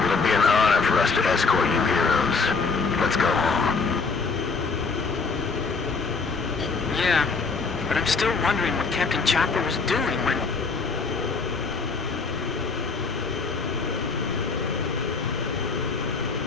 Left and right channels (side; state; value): right; quieter; 4.6 dB